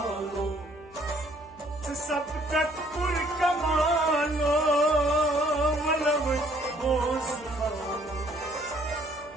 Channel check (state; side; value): noise; left; hum, 23 dB below the sound